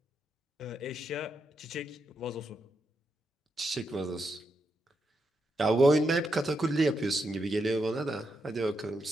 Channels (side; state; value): both; normal; correlation 0.83